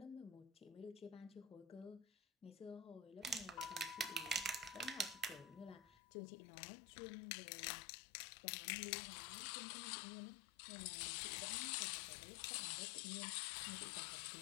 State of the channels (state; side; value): drops out; right; at 6.0 s